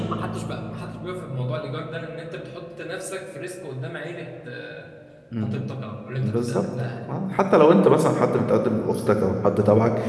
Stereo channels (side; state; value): both; identical; correlation 1.00